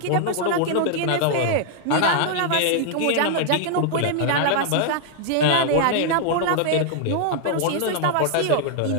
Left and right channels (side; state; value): both; different; correlation -0.01